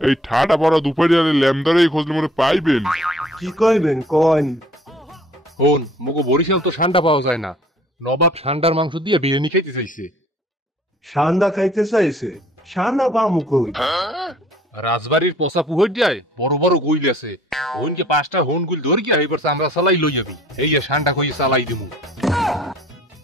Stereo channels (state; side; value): normal; both; correlation 0.55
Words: ঠাডা পড়া দুপুরে ল্যামদারে খোঁজলে মনে পাইবেন। কি কইবেন কন? হন, মুগো বরিশাল তো ষান্ডা পাওয়া যায় না। নবাব ষান্ডার মাংস দিয়ে বিরিয়ানি খাইতে চাইছে। সান্দা খাইতে চাইছে? সান্দা পামু কই? রাজবাড়ির পোষা পুহর দিয়ায় বড় বড় গুইল আছে। হনকে 5টা হন গুইল ধর গিয়া এবার আমরা চালাই লই যাবি। এই ষান্ডা কইয়ে চালাই দিমু।